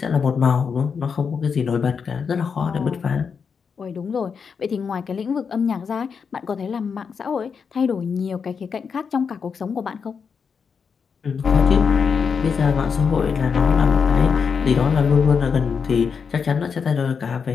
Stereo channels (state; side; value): quieter; right; 6.1 dB